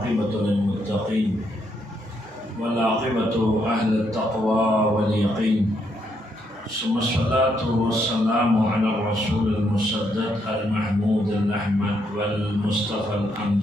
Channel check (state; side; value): normal; both; correlation 0.76